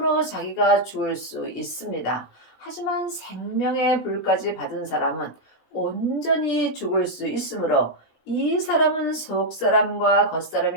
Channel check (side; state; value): right; late; 17 ms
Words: 자기가 죽을 수 있습니다. 하지만 생명의 불까지 받은 사람은 온전히 죽을 수 있으므로 이 사람은 속사람과